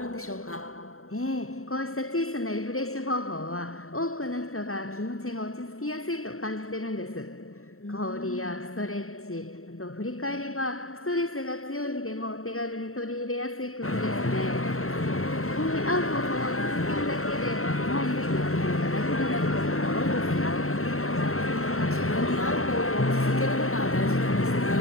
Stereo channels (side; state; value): right; late; 0.63 ms